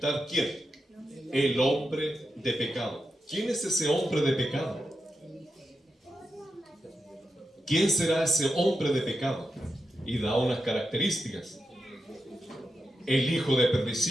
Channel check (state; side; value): normal; both; correlation 0.88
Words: ¿quién? El hombre de pecado. ¿Quién es ese hombre de pecado? ¿Quién será ese hombre de pecado? Y da unas características. El hijo de